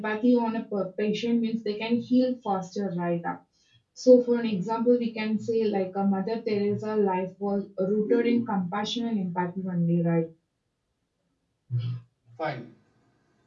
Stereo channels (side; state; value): both; identical; correlation 1.00